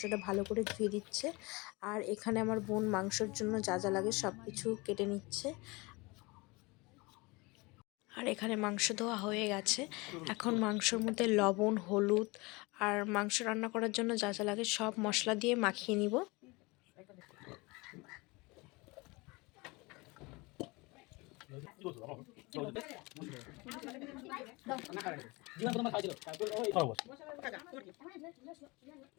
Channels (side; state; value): right; quieter; 25.1 dB